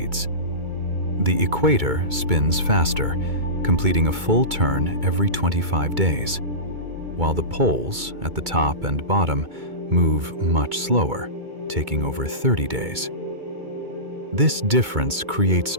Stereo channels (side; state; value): left; late; 2.2 ms